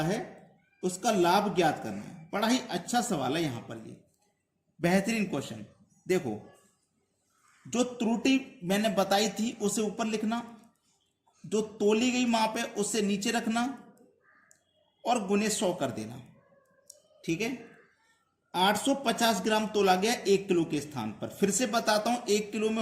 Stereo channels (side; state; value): both; identical; correlation 1.00